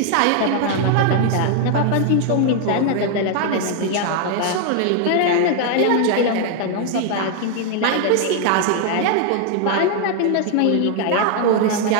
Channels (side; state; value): both; different; correlation 0.00